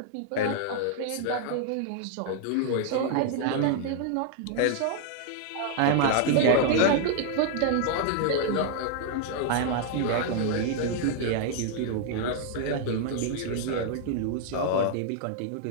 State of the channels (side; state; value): both; different; correlation -0.01